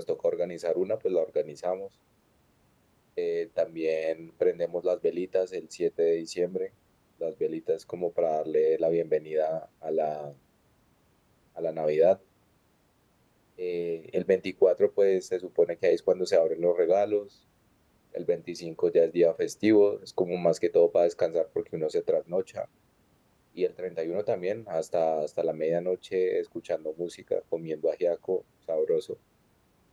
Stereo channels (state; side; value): identical; both; correlation 1.00